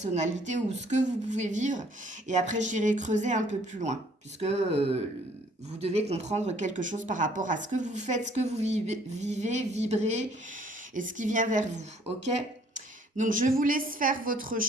ou ce que vous pouvez vivre. Et après, j'irai creuser un peu plus loin, puisque vous devez comprendre quelque chose par rapport à ce que vous faites, ce que vous vivez, vibrez et ce qui vient vers vous. Ok? Donc, je vous laisse faire votre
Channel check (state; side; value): normal; both; correlation 0.60